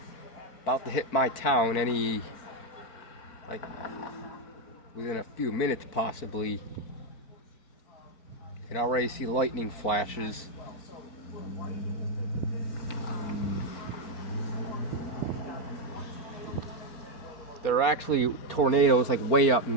about to hit my town any within a few minutes possibly. You can already see lightning flashes. There are actually tornadoes like way up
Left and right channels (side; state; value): right; late; 4.4 ms